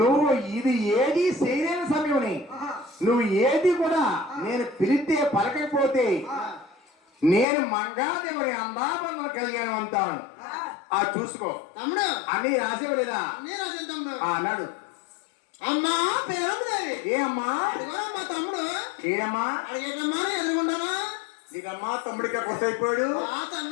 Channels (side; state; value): right; drops out; at 7.5 s